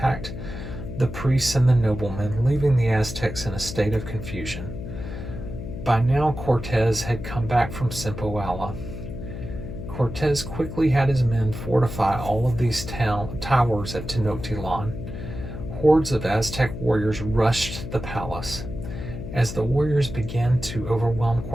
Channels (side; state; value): left; noise; hum, 8 dB below the sound